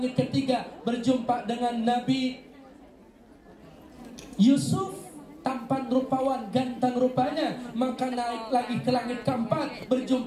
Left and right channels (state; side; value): identical; both; correlation 1.00